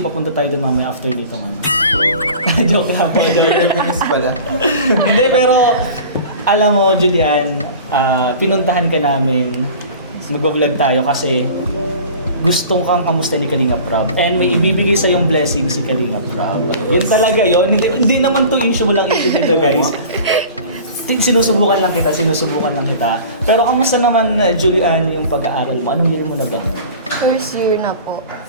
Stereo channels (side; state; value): both; inverted; correlation -0.41